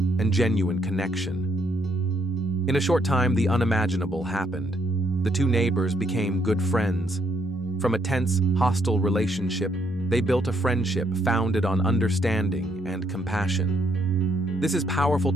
genuine connection. In a short time, the unimaginable happened. the two neighbors became good friends. From a tense, hostile relationship, they built a friendship founded on understanding and compassion. This is powerful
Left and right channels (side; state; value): both; normal; correlation 0.72